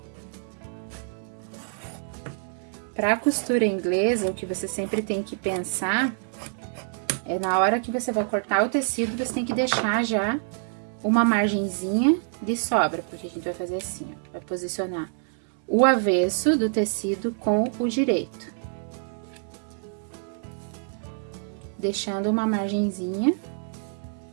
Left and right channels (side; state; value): left; silent; digital silence